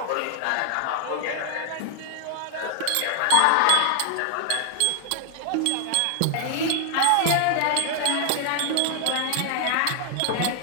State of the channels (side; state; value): both; different; correlation 0.00